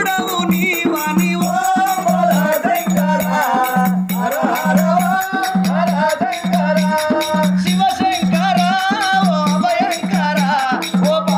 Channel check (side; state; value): both; identical; correlation 1.00